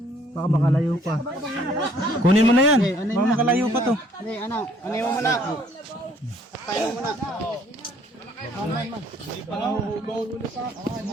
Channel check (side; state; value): both; normal; correlation 0.61